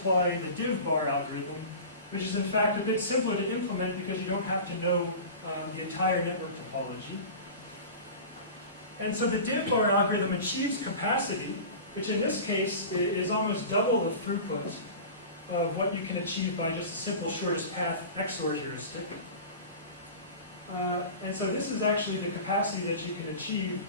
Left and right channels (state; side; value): inverted; both; correlation -0.34